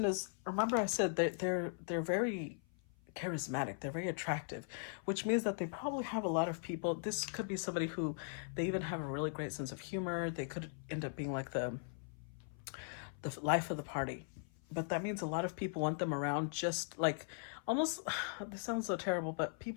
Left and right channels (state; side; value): silent; right; 52 dB below the other